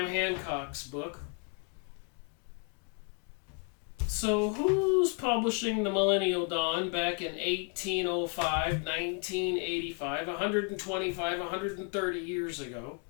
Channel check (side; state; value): right; quieter; 37.6 dB